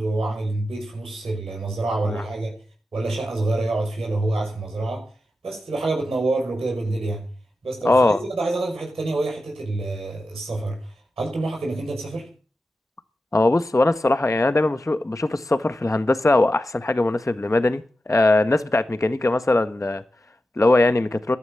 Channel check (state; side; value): normal; both; correlation 0.91